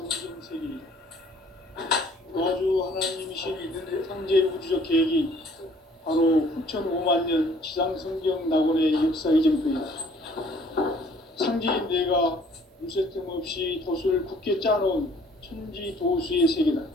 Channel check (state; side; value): normal; both; correlation 0.58